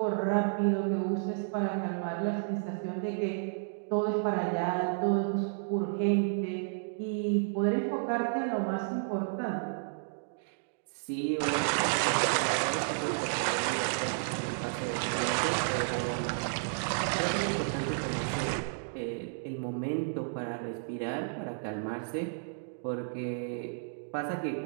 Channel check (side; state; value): left; silent; digital silence